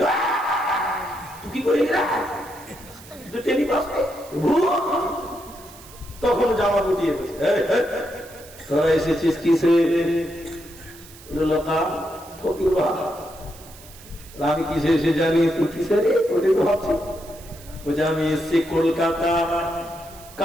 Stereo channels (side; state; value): right; noise; hiss, 20 dB below the sound